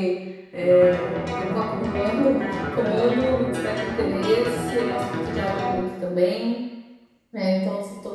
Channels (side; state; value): both; identical; correlation 1.00